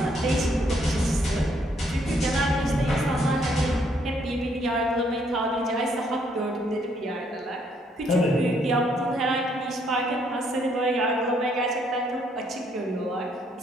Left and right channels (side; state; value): both; normal; correlation 0.70